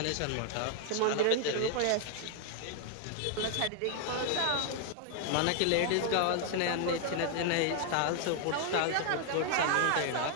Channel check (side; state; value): both; different; correlation 0.00